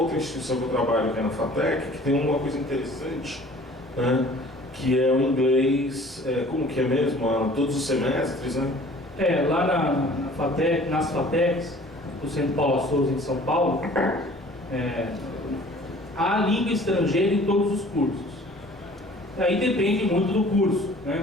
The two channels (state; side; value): normal; both; correlation 0.50